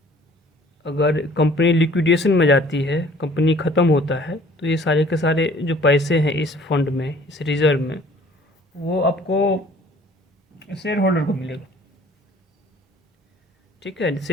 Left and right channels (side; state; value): both; normal; correlation 0.53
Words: अगर कंपनी लिक्विडेशन में जाती है, कंपनी ख़त्म होता है, तो ये सारे के सारे जो पैसे हैं इस फंड में, इस रिज़र्व में, वो आपको शेयर होल्डर को मिलेगा। ठीक है,